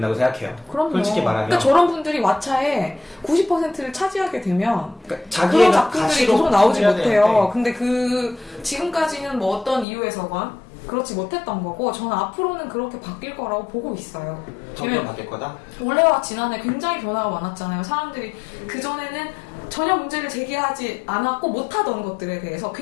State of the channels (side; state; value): right; drops out; at 9.9 s